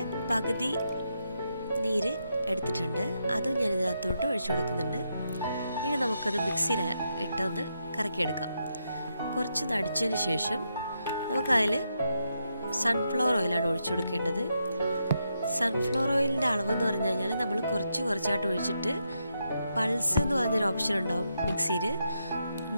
പകുതി നീര് എടുത്തിട്ടുണ്ട്, അതും ഞാൻ ഇതിനകത്തോട്ട് ഒഴിച്ചു കൊടുക്കുന്നുണ്ട്. ഇനി നമുക്കത് മിക്സിയിൽ ഇട്ടൊന്ന് കറക്കിയെടുക്കാം. കുറച്ച് നടിച്ചതിന് ശേഷം നമുക്കതിൽ സൺഫ്ലവർ ഓയിലാണ് ഒഴിച്ചു കൊടുക്കേണ്ടത്. സൺഫ്ലവർ ഓയിലിൻ്റെ അളവെന്ന് പറഞ്ഞു കഴിഞ്ഞാൽ നമ്മൾ കുറച്ചായിട്ട് ഒഴിച്ചിട്ട് പൾസ് എന്ന് പറഞ്ഞൊരു ഓപ്ഷൻ ഉണ്ടാവും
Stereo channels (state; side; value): inverted; both; correlation -0.82